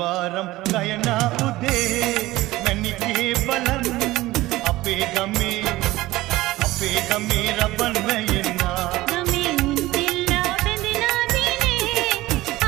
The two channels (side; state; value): left; quieter; 18.0 dB